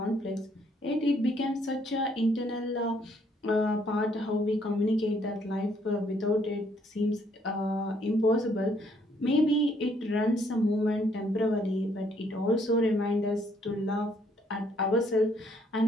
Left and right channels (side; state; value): both; normal; correlation 0.68